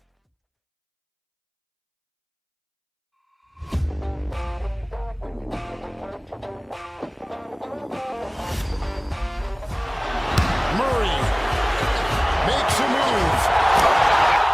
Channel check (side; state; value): both; identical; correlation 1.00